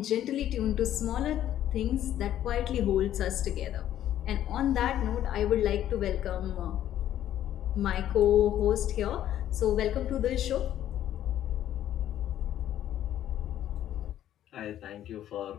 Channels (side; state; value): right; quieter; 11.7 dB